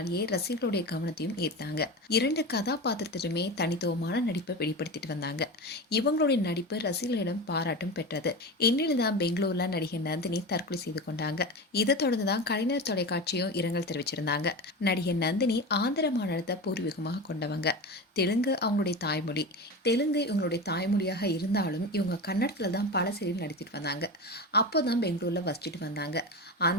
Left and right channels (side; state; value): both; normal; correlation 0.25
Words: ரசிகர்களுடைய கவனத்தையும் ஈர்த்தாங்க. 2 கதாபாத்திரத்திலுமே தனித்துவமான நடிப்பை வெளிப்படுத்திட்டு வந்தாங்க. இவங்களுடைய நடிப்பு ரசிகர்களிடம் பாராட்டும் பெற்றது. இந்நிலையில் தான் பெங்களூர்ல நடிகை நந்தினி தற்கொலை செய்து கொண்டாங்க. இதை தொடர்ந்து தான் கலைஞர் தொலைக்காட்சியும் இரங்கல் தெரிவிச்சிருந்தாங்க. நடிகை நந்தினி ஆந்திர மாநிலத்தை பூர்வீகமாக கொண்டவங்க. தெலுங்கு அவங்களுடைய தாய்மொழி. தெலுங்கு இவங்களுடைய தாய்மொழியாக இருந்தாலும் இவங்க கன்னடத்துல தான் பல சீரியல் நடித்திட்டு வந்தாங்க. அப்போதான் பெங்களூர்ல வசிச்சுட்டு வந்தாங்க.